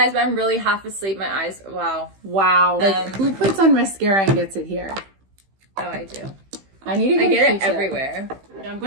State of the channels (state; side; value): late; left; 15 ms